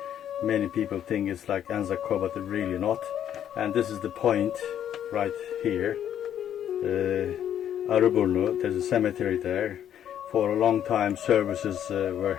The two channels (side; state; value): right; quieter; 10.1 dB